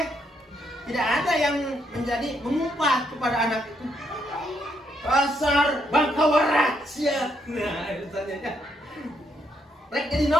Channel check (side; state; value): both; normal; correlation 0.75